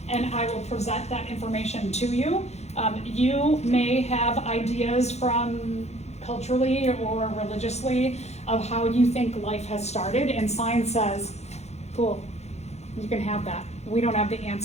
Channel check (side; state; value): right; late; 0.32 ms